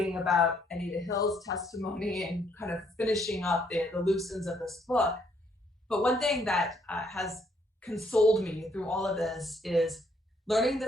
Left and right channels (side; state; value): both; normal; correlation 0.70